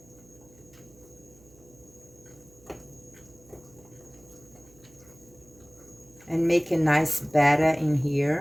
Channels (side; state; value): right; noise; hum, 26 dB below the sound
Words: And make a nice batter in